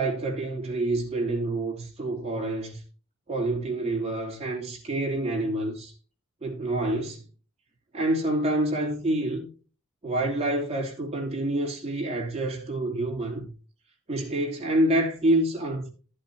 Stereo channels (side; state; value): both; normal; correlation 0.40